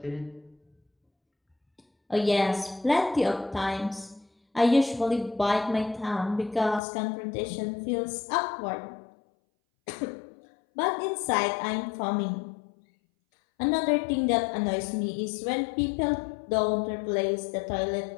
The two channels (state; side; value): drops out; right; at 6.8 s